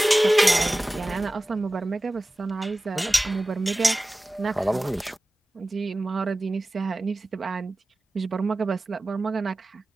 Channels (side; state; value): both; normal; correlation 0.97